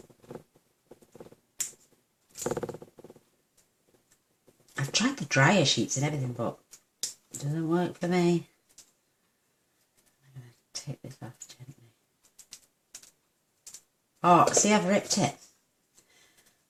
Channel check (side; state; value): both; identical; correlation 1.00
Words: I've tried the dryer sheets and everything, but it doesn't work for me. I'm going to take this off gently. Oh, see, I've ripped it.